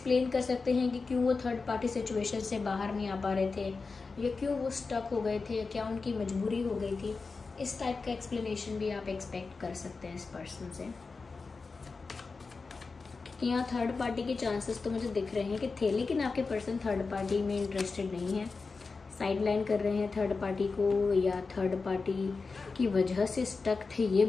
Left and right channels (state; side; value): quieter; right; 4.3 dB